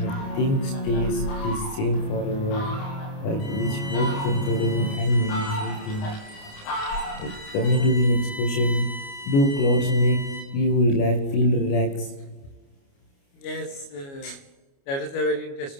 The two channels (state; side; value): late; right; 29 ms